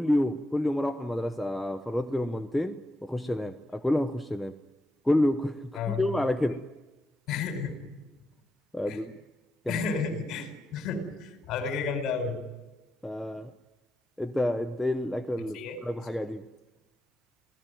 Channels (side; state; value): both; normal; correlation 0.85